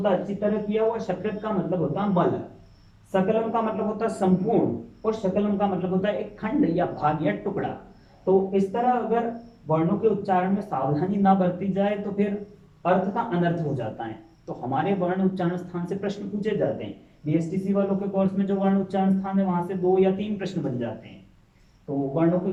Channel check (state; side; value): identical; both; correlation 1.00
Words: है अच्छी तरह किया हुआ, सकृत का मतलब होता है मल, सकलम का मतलब होता है संपूर्ण, और शकलम का मतलब होता है एक खंड या भाग या टुकड़ा। तो इस तरह अगर वर्णों के उच्चारण में सावधानी ना बरती जाए तो फिर अर्थ का अनर्थ हो जाता है। तो हमारे वर्ण उच्चारण स्थान से प्रश्न पूछे जाते हैं। बीएसटीसी वालों के कोर्स में जो वर्ण उच्चारण स्थान है वहां से 2 या 3 प्रश्न बन जाते हैं। तो वर्णों के